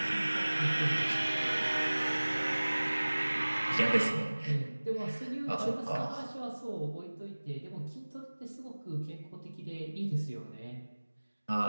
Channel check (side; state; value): both; inverted; correlation -1.00